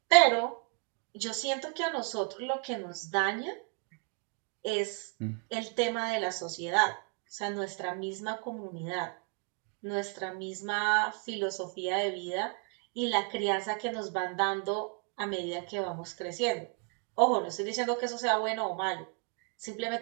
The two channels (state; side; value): quieter; left; 35.6 dB